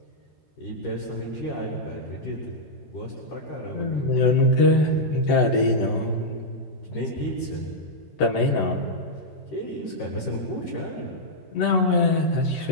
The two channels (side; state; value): right; late; 14 ms